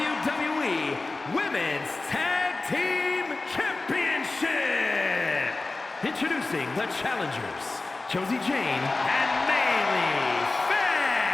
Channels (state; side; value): quieter; right; 3.3 dB